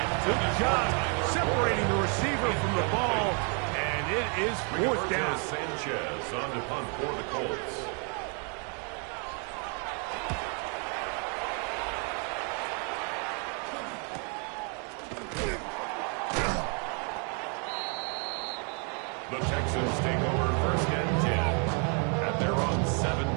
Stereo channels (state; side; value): quieter; left; 38.4 dB